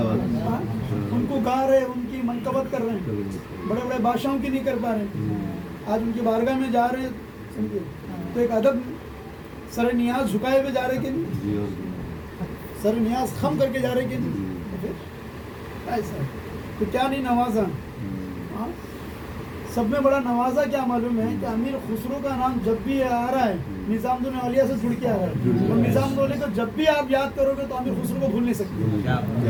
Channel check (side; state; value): both; identical; correlation 1.00